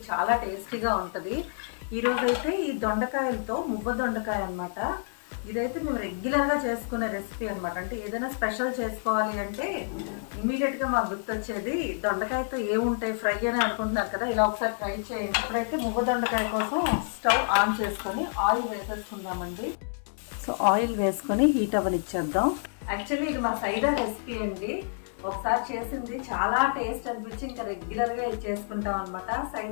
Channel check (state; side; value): silent; right; 59 dB below the other